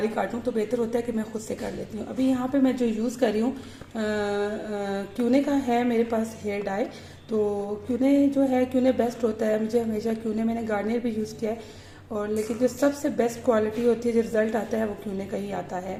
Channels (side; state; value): both; identical; correlation 1.00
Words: काटूँ। तो बेहतर होता है कि मैं खुद से कर लेती हूँ। अभी यहाँ पे मैं जो यूज़ कर रही हूँ क्यूने का है मेरे पास हेयर डाई। तो क्यूने जो है, क्यूने बेस्ट होता है। मुझे हमेशा क्यूने, मैंने गार्नियर भी यूज़ किया है, और लेकिन जो सबसे बेस्ट क्वालिटी होती है, जो रिज़ल्ट आता है, वो क्यूने का ही आता है